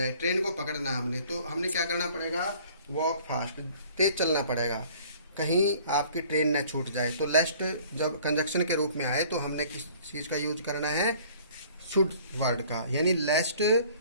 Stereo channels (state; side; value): inverted; both; correlation -0.53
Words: ट्रेन को पकड़ना हमने, तो हमने क्या करना पड़ेगा, वॉक फास्ट, तेज चलना पड़ेगा, कहीं आपकी ट्रेन न छूट जाए। तो लेस्ट जब कंजक्शन के रूप में आए तो हमने किस चीज़ का यूज करना है, शुड वर्ड का, यानी लेस्ट